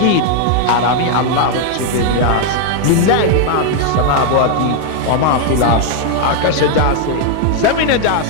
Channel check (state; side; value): different; both; correlation 0.00